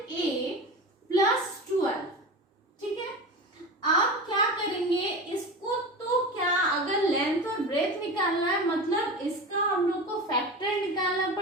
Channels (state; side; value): normal; both; correlation 0.28